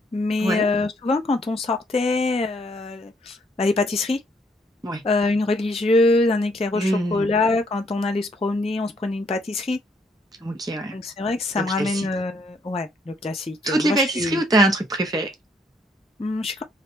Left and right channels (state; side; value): normal; both; correlation 0.69